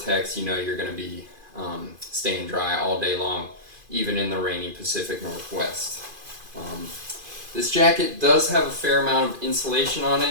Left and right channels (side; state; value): left; late; 2.5 ms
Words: you're going to be staying dry all day long, even in the rainy Pacific Northwest. This jacket does have a fair amount of insulation on